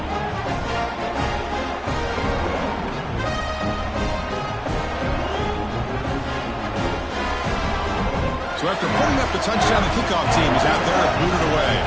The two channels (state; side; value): identical; both; correlation 1.00